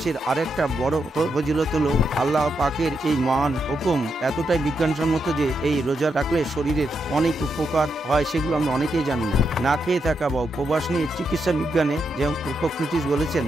আরেকটা বড় ফজিলত হলো আল্লাহ পাকের এই মহান হুকুম এতটাই বিজ্ঞানসম্মত যে এই রোজা রাখলে শরীরের অনেক উপকার হয়, সেগুলো আমরা অনেকেই জানি না। না খেয়ে থাকা বা উপবাস নিয়ে চিকিৎসা বিজ্ঞানে যেমন হিপোক্রেটিস বলেছেন,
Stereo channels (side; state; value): both; normal; correlation 0.82